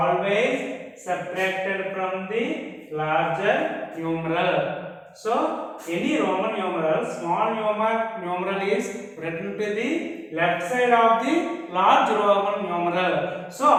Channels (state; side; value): identical; both; correlation 1.00